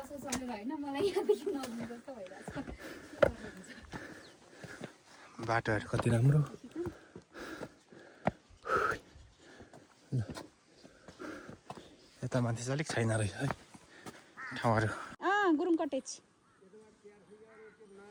सरेर होइन मलाई यहाँदेखि नआउनु जस्तो भइरहेछ बाटोहरू कति राम्रो यता माथि चाहिँ अलिक छैन रहेछ है ठाउँहरू गुरुङ कटेज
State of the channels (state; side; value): identical; both; correlation 1.00